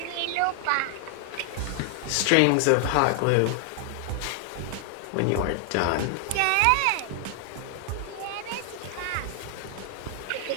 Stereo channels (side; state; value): both; different; correlation 0.00